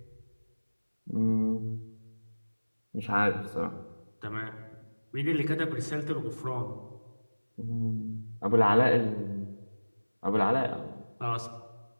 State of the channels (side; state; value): both; inverted; correlation -1.00